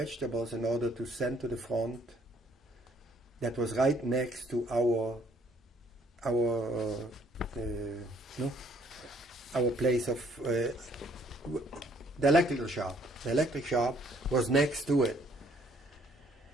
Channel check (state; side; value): normal; both; correlation 0.64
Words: in order to send to the front. That was right next to our place of the electrical shop. The electric shop was next to it.